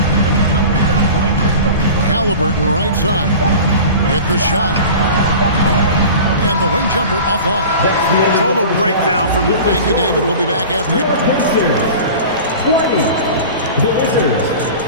Halliburton right side. Get the shot. And the wing jumper offline. Total breakdown from the... Thank you, David. We'll be back after it. 20. The Wizards,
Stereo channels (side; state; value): both; inverted; correlation -0.37